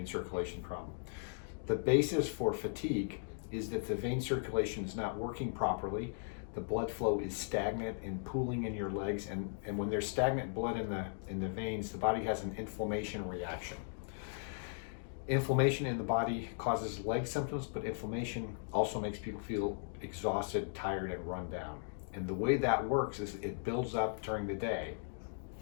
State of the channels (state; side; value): silent; right; digital silence